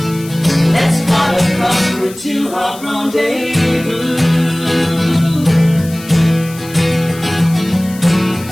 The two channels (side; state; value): left; noise; hiss, 18 dB below the sound